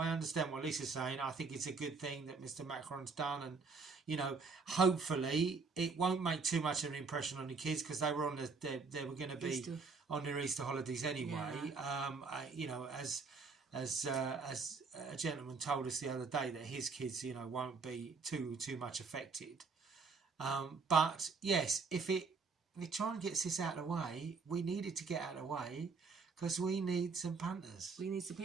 what Lisa's saying. I think it's a good thing that Mr. Macron's done, and you know, hopefully it won't make too much of an impression on the kids, because they were they were going to be Easter. On their Easter holidays anyway. Yeah. You know, as a gentleman told us the other day, that his kids, you know, won't be too much affected. But yes, if it try and gets this out of the way, we need it to get out of the way, because we need some punters. We need some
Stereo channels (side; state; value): left; quieter; 4.6 dB